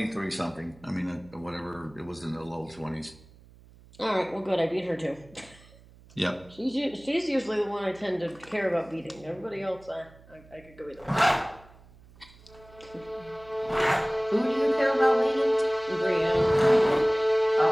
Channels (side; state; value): right; noise; hum, 24 dB below the sound